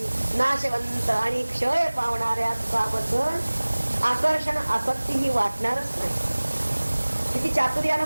नाशवंत आणि क्षय पावणाऱ्या सुखाबद्दल आकर्षण आसक्तीही वाटणारच नाही. किती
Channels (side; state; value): both; inverted; correlation -1.00